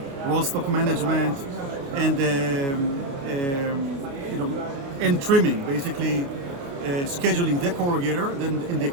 roll stock management and and trimming, basically scheduling the corrugator, then in the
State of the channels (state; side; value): late; left; 29 ms